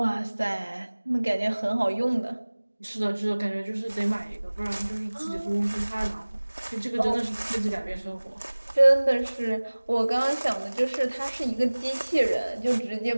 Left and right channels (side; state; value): both; inverted; correlation -1.00